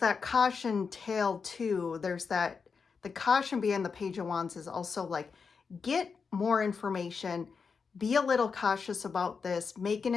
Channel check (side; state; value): right; quieter; 5.4 dB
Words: caution tale too. There's that, the caution being the Page of Wands is also like, get more information, be a little cautious about this, make an